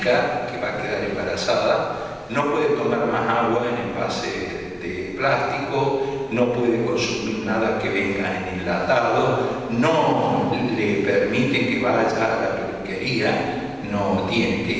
que va a quedar embarazada, no puede tomar más agua en envase de plástico, no puede consumir nada que venga en enlatado, no le permiten que vaya a la peluquería, no tiene que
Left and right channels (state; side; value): identical; both; correlation 1.00